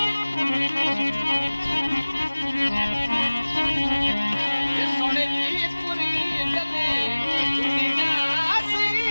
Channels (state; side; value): inverted; both; correlation -1.00